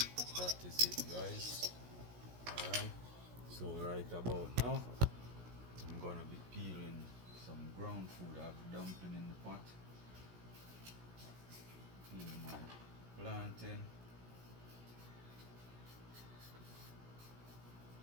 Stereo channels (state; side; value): late; left; 17 ms